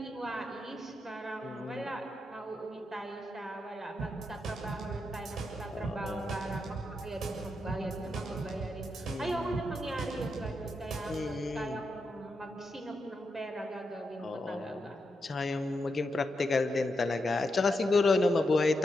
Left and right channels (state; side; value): normal; both; correlation 0.85